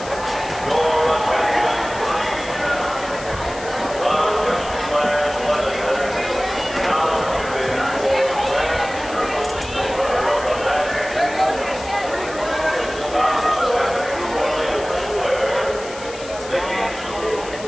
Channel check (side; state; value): left; noise; hiss, 15 dB below the sound